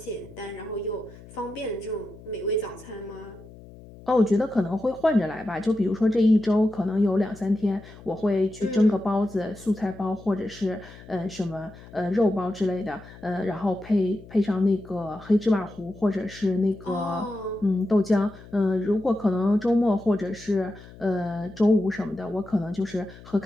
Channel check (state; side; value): noise; left; hum, 19 dB below the sound